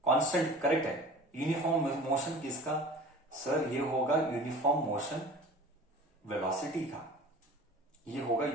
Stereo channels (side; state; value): both; normal; correlation 0.41